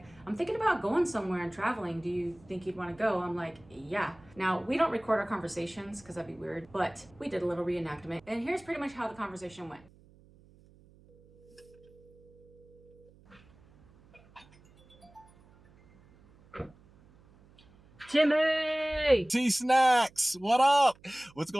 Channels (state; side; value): noise; right; hum, 27 dB below the sound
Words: I'm thinking about going somewhere and traveling. Do you think you'd want to go? I'm like, yeah. Now, we don't record our conversations because that'd be weird, but we did a little reenactment. And here's pretty much how the conversation went. Timmy! T-Snacks, what up? What's